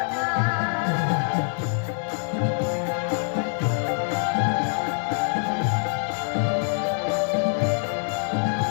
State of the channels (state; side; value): silent; right; 55 dB below the other